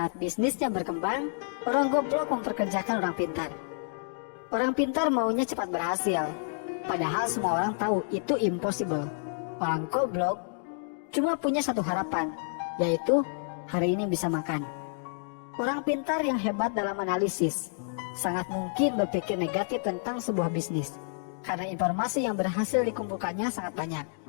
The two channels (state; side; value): silent; right; digital silence